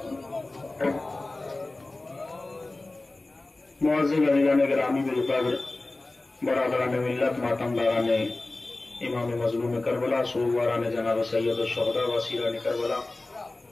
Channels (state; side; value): quieter; right; 3.0 dB